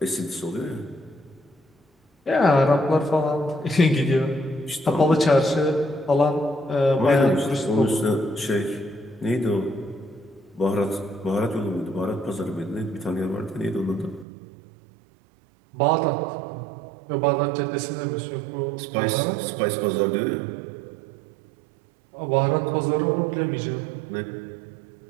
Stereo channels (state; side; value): drops out; left; at 14.2 s